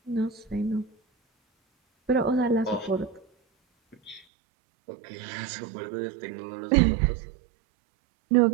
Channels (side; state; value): left; drops out; at 4.2 s